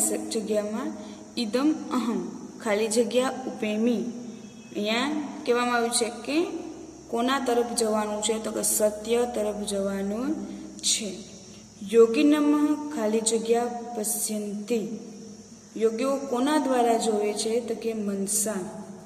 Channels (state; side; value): identical; both; correlation 1.00